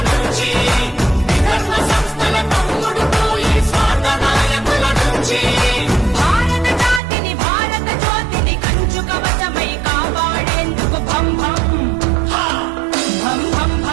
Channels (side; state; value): left; drops out; at 7.0 s